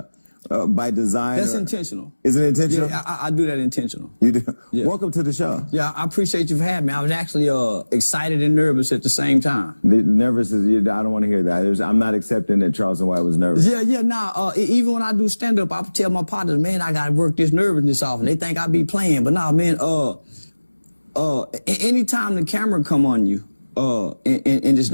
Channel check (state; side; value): inverted; both; correlation -1.00